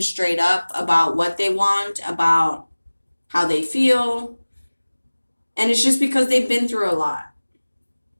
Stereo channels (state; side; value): inverted; both; correlation -1.00